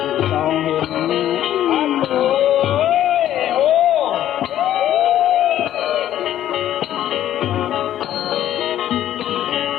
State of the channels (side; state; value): right; quieter; 12.0 dB